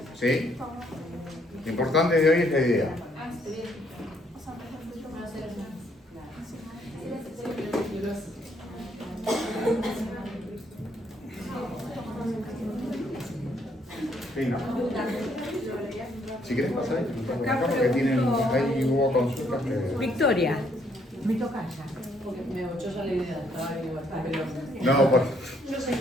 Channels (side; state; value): both; normal; correlation 0.69